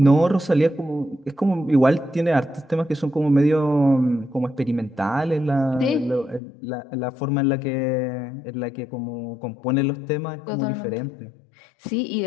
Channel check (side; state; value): right; drops out; at 6.4 s